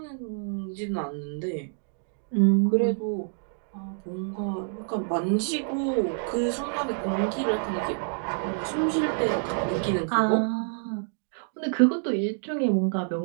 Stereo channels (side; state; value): left; silent; 60 dB below the other